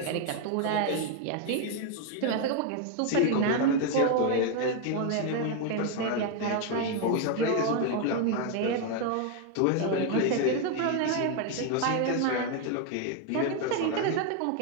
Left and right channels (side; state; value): both; different; correlation 0.01